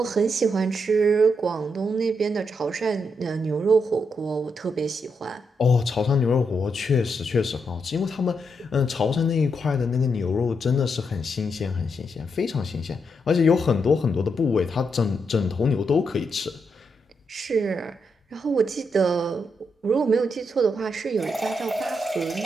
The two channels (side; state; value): both; normal; correlation 0.81